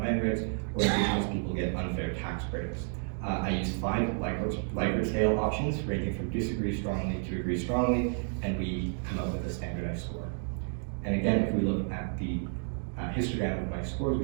grants, or Indigenous people get unfair tax breaks. I used 5 Likert scale options, ranging from disagree strongly to agree strongly, and we come up with a standardized score. And again, if we look at the histogram of my scores, we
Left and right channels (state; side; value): silent; left; 57 dB below the other